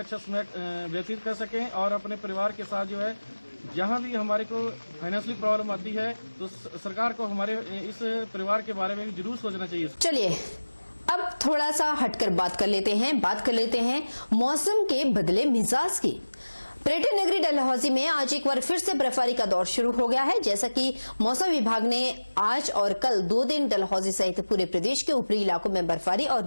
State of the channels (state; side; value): inverted; both; correlation -1.00